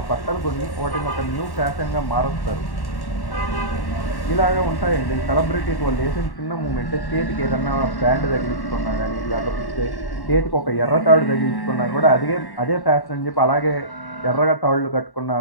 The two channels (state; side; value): late; right; 1.1 ms